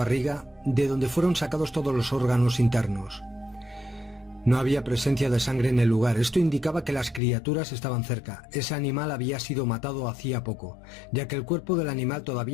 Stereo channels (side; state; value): right; drops out; at 7.2 s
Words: de donde fueron sacados todos los órganos internos. No había presencia de sangre en el lugar. Esto indicaba que las criaturas estaban cerca. Ese animal había sido matado hacía poco, ya que el cuerpo del animal